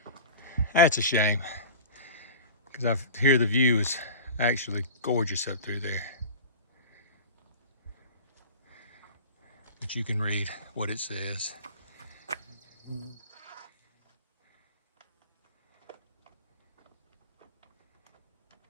That's a shame, because I hear the view is actually gorgeous up through there. But you can read what it says.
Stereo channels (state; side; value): inverted; both; correlation -0.35